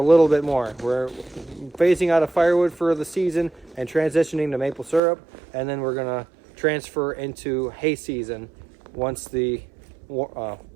little bit more. We're phasing out of firewood for the season and transitioning to maple syrup, and then we're going to transfer into hay season once the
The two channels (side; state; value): left; drops out; at 5.0 s